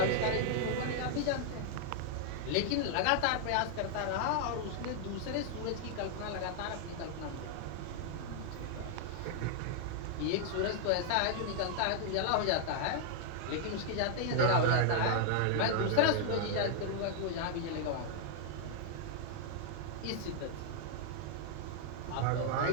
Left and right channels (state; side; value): different; both; correlation 0.00